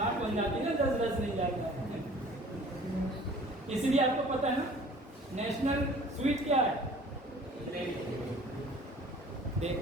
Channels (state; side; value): normal; both; correlation 0.49